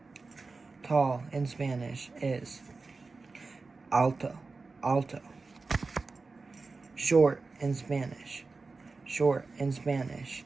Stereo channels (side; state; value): left; quieter; 4.0 dB